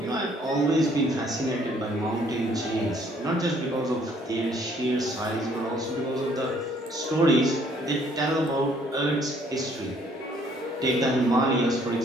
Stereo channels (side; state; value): both; normal; correlation 0.63